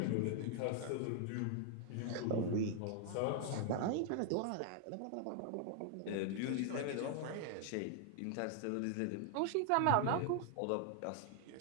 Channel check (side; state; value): both; different; correlation 0.00